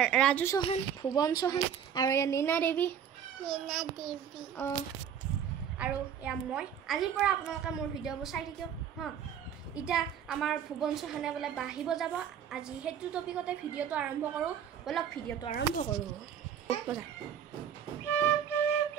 ৰাজু চৌহান ভুৱন চৌহান আৰু ইয়া নীনা দেৱী আৰু ইয়া মই আজিৰ পৰা আপোনালোকে মোৰ ভিডিঅ'বোৰ চাই থাকিব হা ইটা আমাৰ ভুৱন চৌহানে বলে বাহিব যাব আজি হেতু টপিকতে ভিডিঅ'টো আৰম্ভ কৰো বলক ভিডিঅ'টো আৰম্ভ কৰো বজা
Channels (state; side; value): quieter; left; 8.6 dB